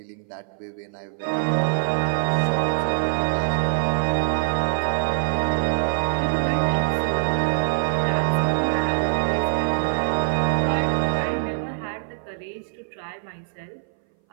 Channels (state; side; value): silent; left; 59 dB below the other